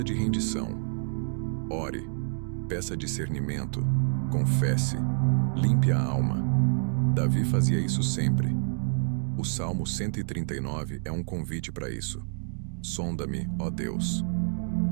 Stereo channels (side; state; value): left; silent; digital silence